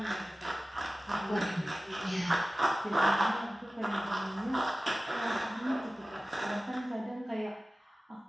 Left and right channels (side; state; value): both; normal; correlation 0.96